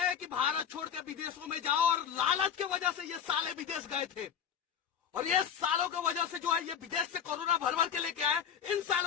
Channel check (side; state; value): right; quieter; 8.3 dB